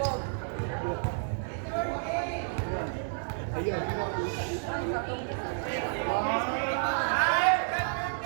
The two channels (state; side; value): silent; left; digital silence